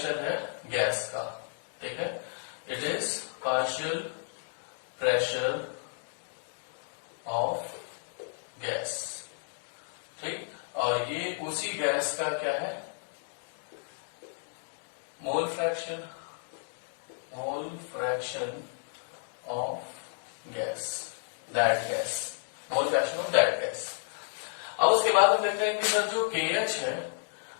है गैस का। ठीक है, it is partial pressure of gas. ठीक, और ये उसी गैस का क्या है, मोल fraction of gas, that gas, mole fraction of that gas. अब उसके बाद हम देखते हैं कि सर जो KH है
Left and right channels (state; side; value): silent; right; digital silence